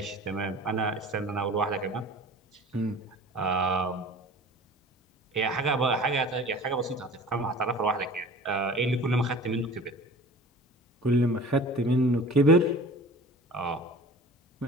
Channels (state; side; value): normal; both; correlation 0.42